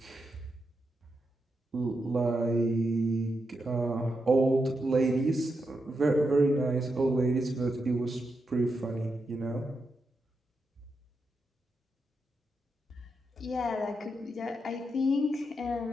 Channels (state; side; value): normal; both; correlation 0.85